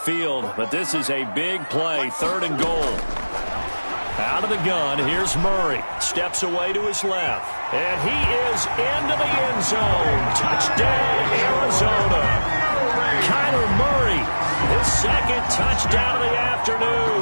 but this is a big play. 3rd and goal. Out of the gun, here's Murray. Steps away to his left. And he is into the end zone. Touchdown, Arizona. Kyler Murray, his 2nd touchdown of the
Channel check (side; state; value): both; inverted; correlation -1.00